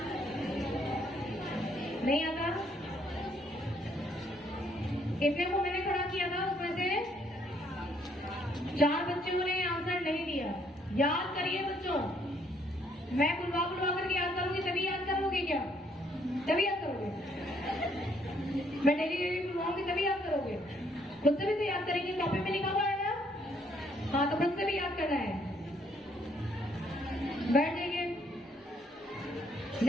नहीं आता? इतने को मैंने खड़ा किया था, उसमें से 4 बच्चों ने आंसर नहीं दिया। याद करिए बच्चों, मैं बुलवा बुलवा करके याद करूंगी तभी याद करोगे क्या? तभी याद करोगे? मैं डेली डेली बुलवाऊंगी तभी याद करोगे? खुद से भी तो याद करेंगे, कॉपी में लिखा हुआ है ना? हाँ, तो खुद से भी याद करना है। बैठ जाइए।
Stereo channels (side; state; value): both; normal; correlation 0.68